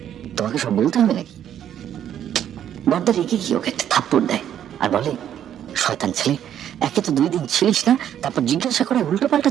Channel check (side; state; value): left; quieter; 10.2 dB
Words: তোমাকে সব বলতে হবে নাকি? বর্দা রেগে গিয়ে ওকে একটা থাপ্পড় দেয় আর বলে, শয়তান ছেলে, একে তো 2 দিন ছিলিস না, তারপর জিজ্ঞাসা করে উল্টো পাল্টা